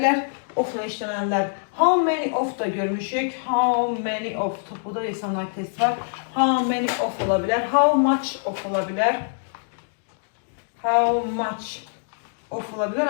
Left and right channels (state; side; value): silent; right; digital silence